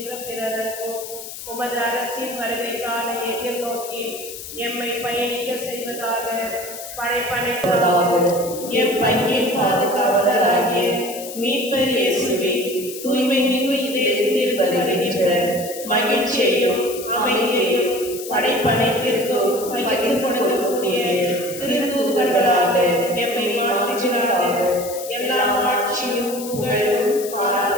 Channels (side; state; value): left; noise; hiss, 11 dB below the sound